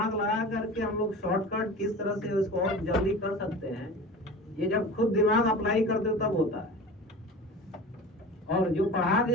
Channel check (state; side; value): normal; both; correlation 0.34